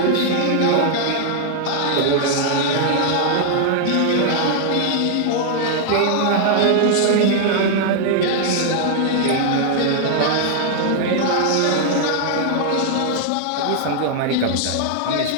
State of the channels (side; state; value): both; different; correlation 0.00